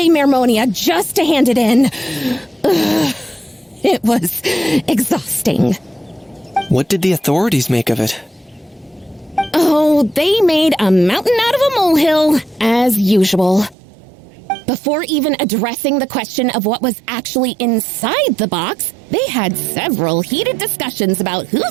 Mermonia just to hand it in. It was exhausting. What did the authorities make of it? Oh, they made a mountain out of a molehill, as usual. Before even addressing the question of what was actually inside the box, they had several heated discussions about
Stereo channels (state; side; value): drops out; left; at 13.8 s